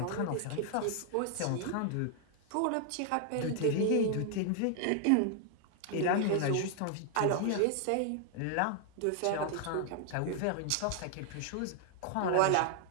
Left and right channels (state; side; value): different; both; correlation 0.00